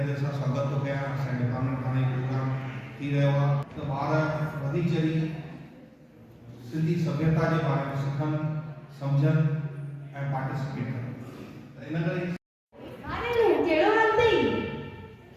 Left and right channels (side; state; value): both; identical; correlation 1.00